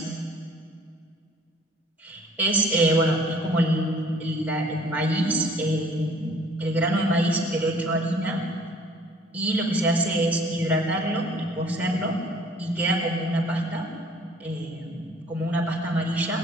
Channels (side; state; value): both; normal; correlation 0.55